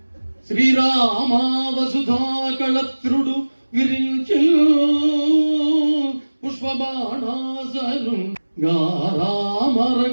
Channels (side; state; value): both; inverted; correlation -1.00